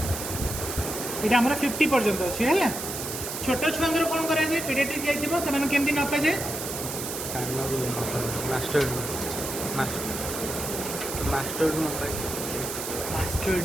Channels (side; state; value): right; noise; hiss, 6 dB below the sound